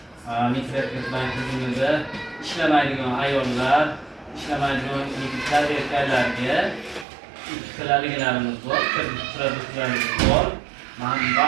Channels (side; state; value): left; drops out; at 7.1 s